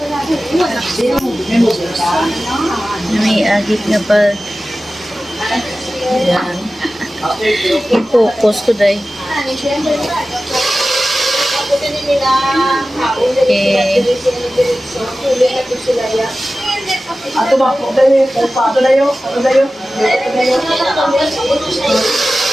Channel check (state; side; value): normal; both; correlation 0.95